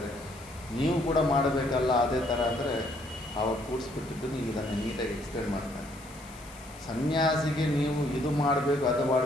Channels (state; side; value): noise; left; hiss, 21 dB below the sound